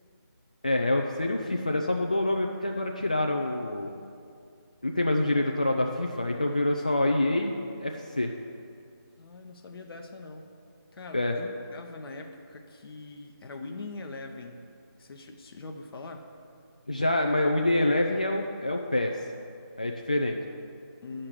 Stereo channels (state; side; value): inverted; both; correlation -0.87